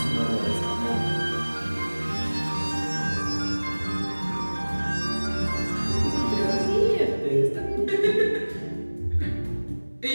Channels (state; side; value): inverted; both; correlation -1.00